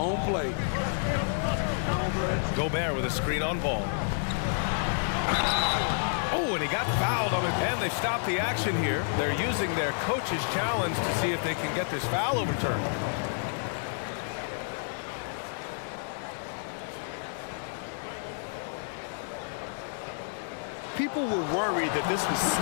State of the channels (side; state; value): right; silent; digital silence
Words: play. Gobert with a screen on ball. Oh, and he got fouled on it. And they've stopped the action here. They're using their coach's challenge to see if they can get this foul overturned. People were worried that this would